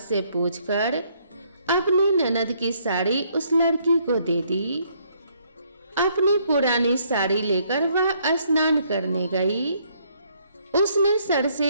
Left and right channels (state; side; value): inverted; both; correlation -0.68